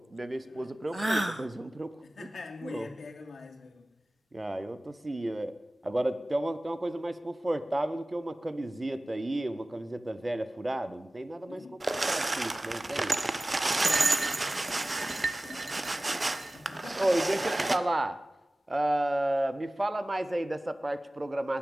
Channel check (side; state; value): both; normal; correlation 0.97